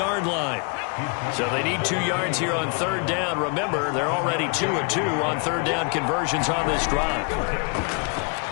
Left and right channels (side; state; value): right; quieter; 35.9 dB